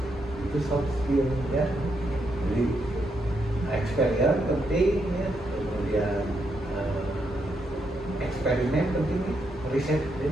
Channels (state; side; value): normal; both; correlation 0.80